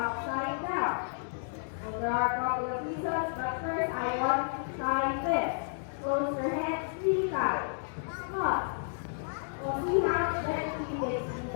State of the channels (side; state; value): right; silent; digital silence